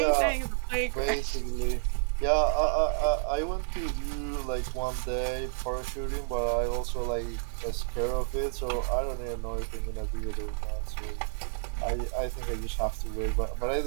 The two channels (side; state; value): left; silent; 58 dB below the other